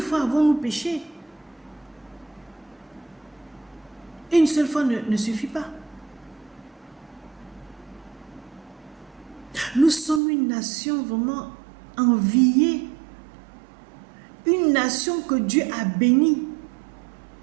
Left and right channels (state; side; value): drops out; left; at 10.2 s